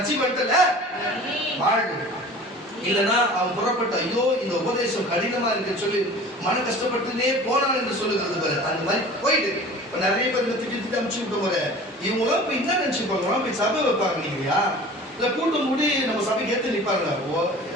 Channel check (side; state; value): both; normal; correlation 0.42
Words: பண்ணிட்டல, வாழ்வு இல்லைன்னா அவன் புறப்பட்ட ஐயோ இந்த உபதேசம் கடினமா இருக்கு சொல்லி மன கஷ்டப்பட்டுனே போனான் என்று சொல்லுகிறது பாரு. அந்த மாதிரி போயிட்டு இப்ப நிறைய பேர் திட்டி அமுச்சு விட்ட போற இவங்களாம் இப்ப என்ன நினைச்சு போறாங்க, போய் சபை வைப்பாங்க நீங்கயா இல்ல கூட்டம் கூடி நம்ம சபைக்கு ஏத்து நிப்பாங்க.